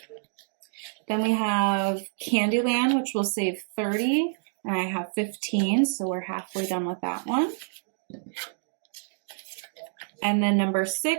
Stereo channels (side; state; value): left; silent; digital silence